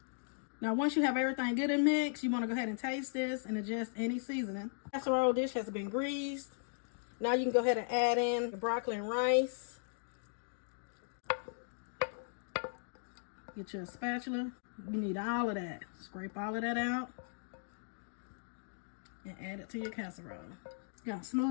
Now once you have everything good and mixed, you want to go ahead and taste this and adjust any seasoning. Casserole dish has been greased. Now you can go ahead and add in your broccoli and rice. Get your spatula. You need all of that. Scrape all of that out and add it to your casserole. You're gonna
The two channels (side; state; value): right; silent; digital silence